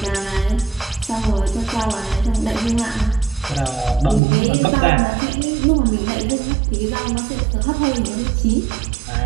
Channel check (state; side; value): drops out; left; at 4.2 s